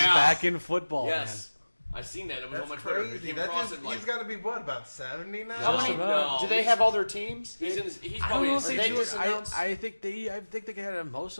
back in football, Yes. I seen that. It was That's on my Twitter. crazy. Came That across just, it, like, he's got to be, what, about 70 now? Just about. Do they have all their teams? He's in his, he's man. I don't know if probably they in do his it. 60s. I think they had most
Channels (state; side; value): inverted; both; correlation -1.00